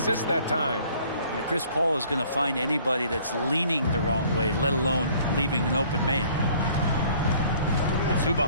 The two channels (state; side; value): inverted; both; correlation -0.56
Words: that time. And Chris Paul is going to find anybody that's leaning the wrong way, let alone leaving an open man.